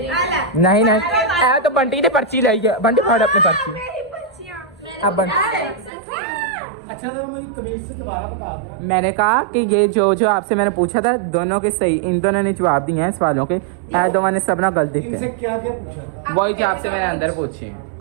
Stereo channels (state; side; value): drops out; left; at 5.9 s